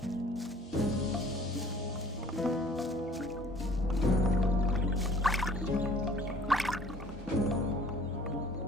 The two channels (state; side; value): normal; both; correlation 0.53